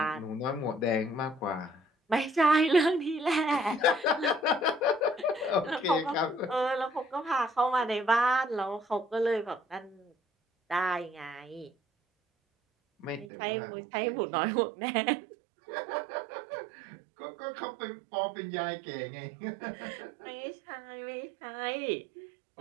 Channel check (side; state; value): left; drops out; at 13.3 s